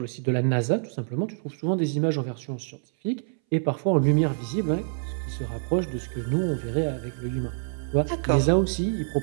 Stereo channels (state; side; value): silent; left; 61 dB below the other